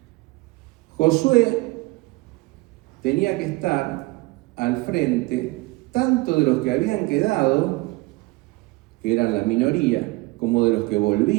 Josué tenía que estar al frente tanto de los que habían quedado, que eran la minoría, como de los que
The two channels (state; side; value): quieter; left; 22.8 dB